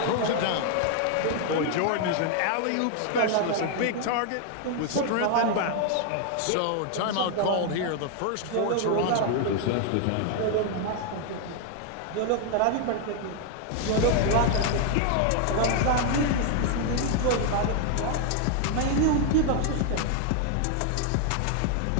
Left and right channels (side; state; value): both; different; correlation 0.00